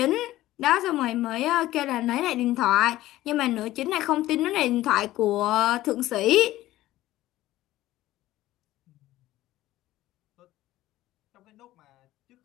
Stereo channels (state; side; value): quieter; right; 15.6 dB